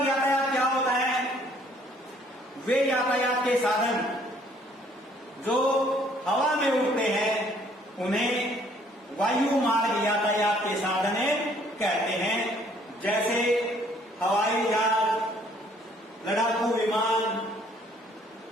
यातायात क्या होता है? वे यातायात के साधन जो हवा में उड़ते हैं उन्हें वायु मार्ग यातायात के साधन कहते हैं। जैसे हवाई जहाज, लड़ाकू विमान,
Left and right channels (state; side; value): normal; both; correlation 0.61